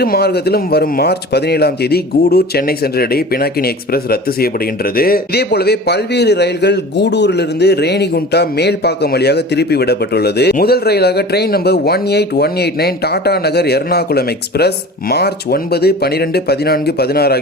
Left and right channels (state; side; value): normal; both; correlation 0.38